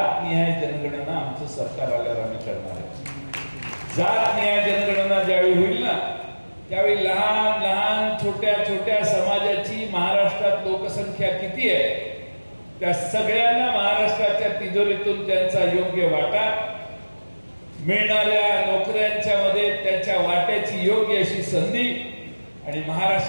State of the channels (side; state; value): both; inverted; correlation -1.00